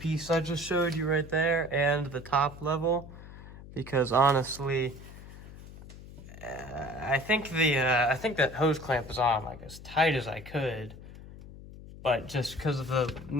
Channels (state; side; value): noise; left; hum, 16 dB below the sound